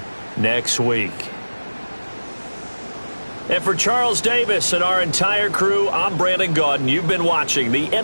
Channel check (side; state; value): both; inverted; correlation -1.00